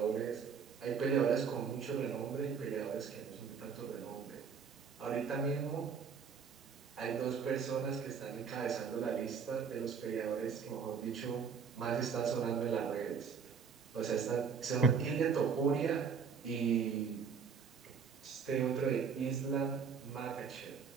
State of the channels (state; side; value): quieter; left; 6.2 dB